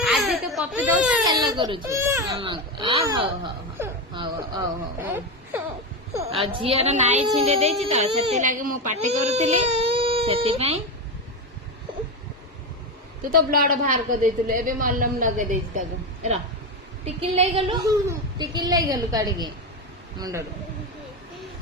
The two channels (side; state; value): both; normal; correlation 0.14